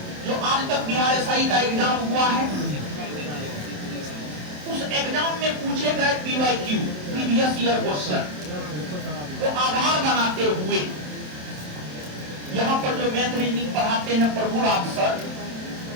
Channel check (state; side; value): late; left; 27 ms